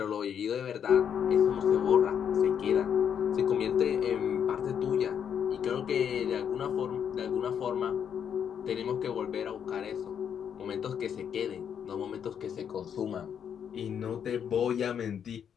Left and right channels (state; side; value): quieter; right; 8.2 dB